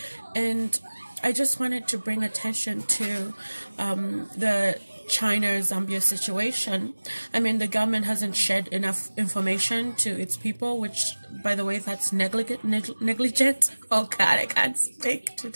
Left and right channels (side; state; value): both; inverted; correlation -1.00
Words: And I just wanted to bring attention to the China-Zambia situation. I mean, the government hasn't shared enough information to its people, which, by the way, that's negligent. Oh God, I can't speak